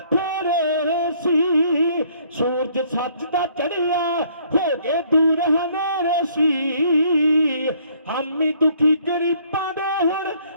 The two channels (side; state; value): both; inverted; correlation -0.62